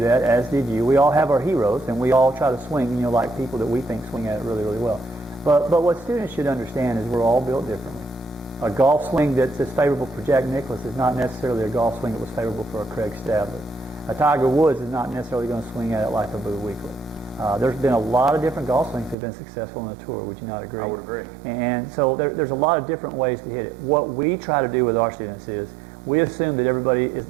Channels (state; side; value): drops out; left; at 19.2 s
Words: as did you. We all have our heroes, and we all try to swing, like people that we think swing at it really, really well. But what students should understand is we're all built differently. A golf swing that's favorable for Jack Nicklaus is not necessarily a golf swing that was favorable for a Craig Stadler. A Tiger Woods is not necessarily going to swing at it like a Boo Weekley. There's been a lot of different golf swings that have been successful on the tour. Would you not agree? I would agree. And so there's a lot of different ways to hit it. What we try to do with our students is we assume that everybody is